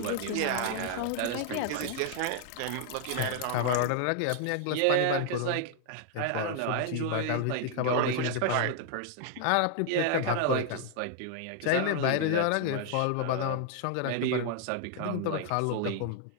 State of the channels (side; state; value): both; different; correlation 0.00